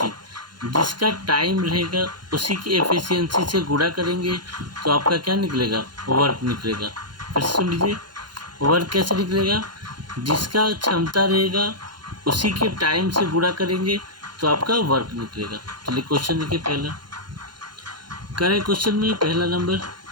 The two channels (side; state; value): left; late; 0.71 ms